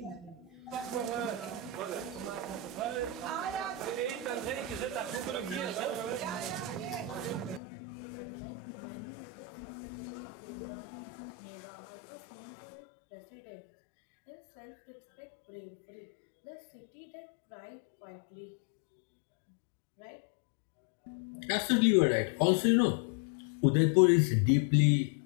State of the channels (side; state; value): right; drops out; at 7.6 s